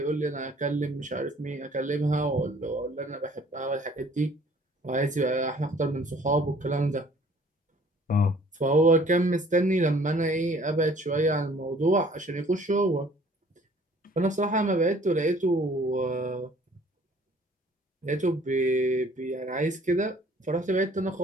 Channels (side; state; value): both; normal; correlation 0.55